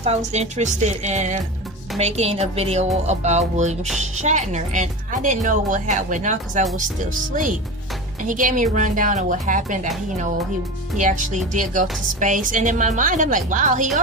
I was interested in making a video about William Shatner. And I didn't know what happened now because I was still asleep. And he gave me a rundown of what happened, that he actually did go to space. And in my mind, I'm like, wow, he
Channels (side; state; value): both; normal; correlation 0.27